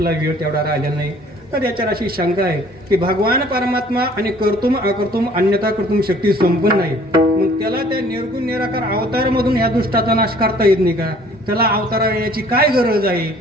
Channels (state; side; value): normal; both; correlation 0.55